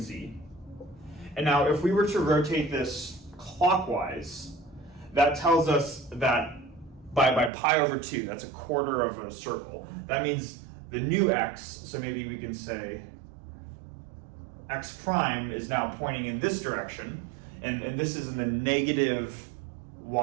And now if we were to rotate this clockwise, that tells us that by pi over 2, that's a quarter of a circle. That means the new x, so maybe we can say x prime is now pointing in this direction, and this is in the negative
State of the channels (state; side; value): drops out; left; at 7.5 s